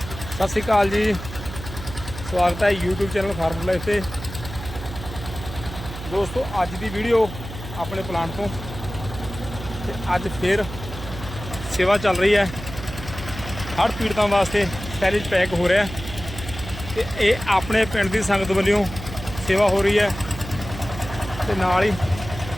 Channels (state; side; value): noise; right; hum, 11 dB below the sound